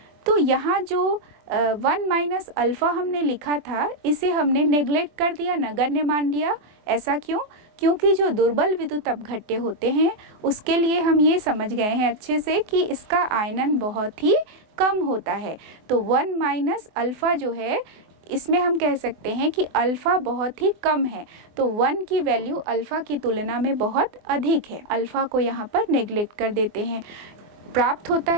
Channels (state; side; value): late; left; 24 ms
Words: तो यहाँ जो 1 माइनस अल्फ़ा हमने लिखा था इसे हमने नेग्लेक्ट कर दिया, नगण्य मान लिया। ऐसा क्यों? क्योंकि जो दुर्बल विद्युत अपघट्य होते हैं उसके लिए हम ये समझ गए हैं अच्छे से कि इसका आयनन बहुत ही कम होता है। तो 1 माइनस अल्फ़ा जो है इसमें हम कह सकते हैं कि अल्फ़ा बहुत ही कम है, तो 1 की वैल्यू अल्फ़ा की तुलना में बहुत अधिक है। अल्फ़ा को यहाँ पर नेग्लेक्ट कर देते हैं। प्राप्त होता